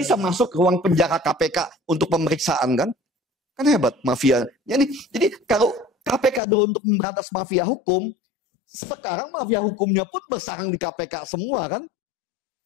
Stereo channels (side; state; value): right; drops out; at 6.4 s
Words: masuk ke ruang penjara KPK untuk pemeriksaan kan? Kan hebat mafia. Jadi kalau KPK dulu untuk memberantas mafia hukum, sekarang mafia hukumnya pun bersarang di KPK semua kan?